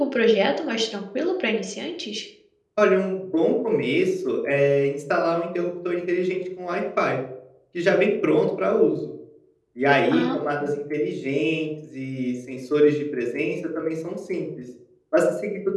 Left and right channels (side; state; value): both; identical; correlation 1.00